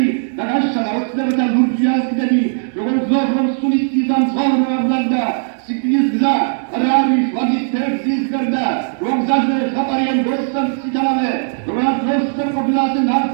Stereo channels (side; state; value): left; silent; 68 dB below the other